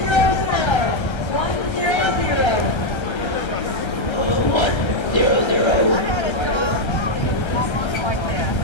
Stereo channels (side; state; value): right; late; 1.3 ms